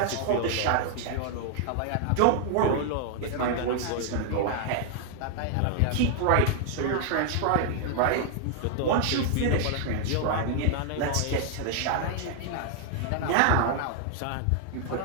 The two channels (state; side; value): different; both; correlation 0.00